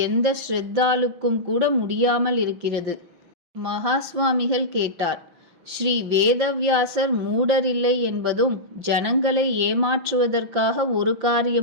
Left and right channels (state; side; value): late; left; 5.8 ms